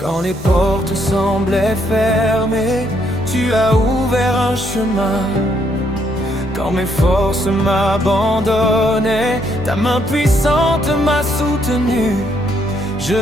les portes semblaient fermées, tu as ouvert un chemin. Quand mes forces m'abandonnaient, ta main puissante m'a soutenu. Je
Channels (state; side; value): normal; both; correlation 0.72